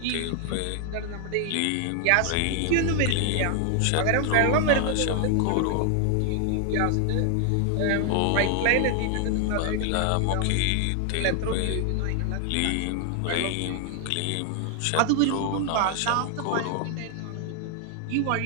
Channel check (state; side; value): different; both; correlation 0.00